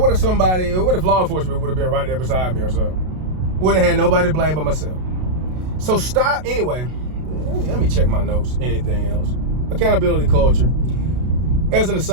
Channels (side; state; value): left; late; 32 ms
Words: if law enforcement would have been right there beside me or something? Would have had nobody to blame but myself. So stop, anyway, let me check my notes, anything else. Accountability culture. As an